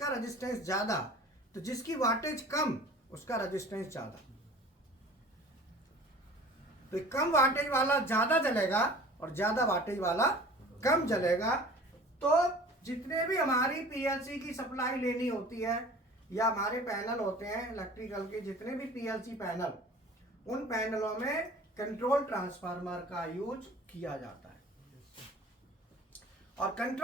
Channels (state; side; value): normal; both; correlation 0.44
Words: रेजिस्टेंस ज्यादा, तो जिसकी वाटेज कम उसका रेजिस्टेंस ज्यादा, तो कम वाटेज वाला ज्यादा जलेगा और ज्यादा वाटेज वाला कम जलेगा। तो जितने भी हमारी पीएलसी की सप्लाई लेनी होती है या हमारे पैनल होते हैं इलेक्ट्रिकल के, जितने भी पीएलसी पैनल, उन पैनलों में कंट्रोल ट्रांसफार्मर का यूज किया जाता है, और